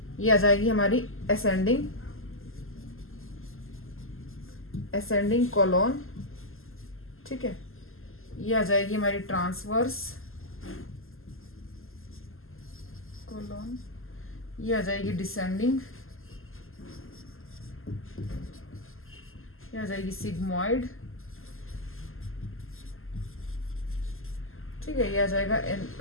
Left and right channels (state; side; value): late; right; 0.60 ms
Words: ये आ जाएगी हमारी असेंडिंग कोलोन। ठीक है, ये आ जाएगी हमारी ट्रांसवर्स कोलोन, ये आ जाएगी डिसेंडिंग, ये आ जाएगी सिग्मोइड। ठीक है, ये आ जाएगा